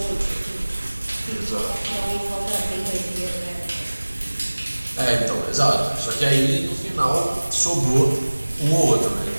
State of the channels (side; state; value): both; inverted; correlation -1.00